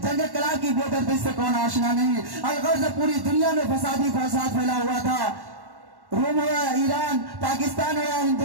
جنگ کلا کی بے دردی سے کون آشنا نہیں۔ الغرض پوری دنیا میں فسادی فساد پھیلا ہوا تھا، روم ہو یا ایران، پاکستان ہو یا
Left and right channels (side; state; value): left; late; 1.1 ms